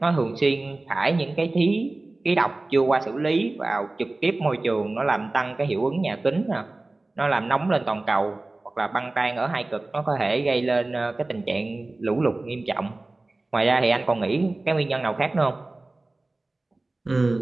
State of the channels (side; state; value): left; quieter; 3.0 dB